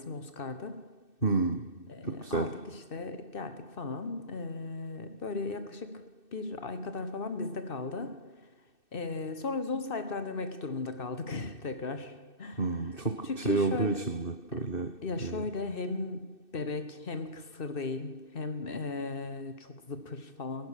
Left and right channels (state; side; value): late; right; 2.6 ms